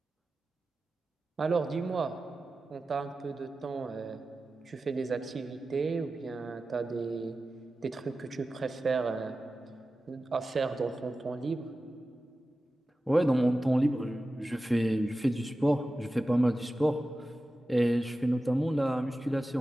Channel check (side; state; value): both; normal; correlation 0.94